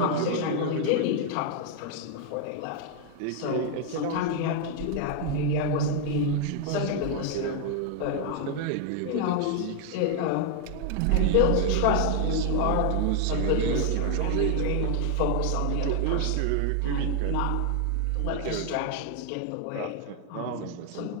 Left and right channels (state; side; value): different; both; correlation 0.00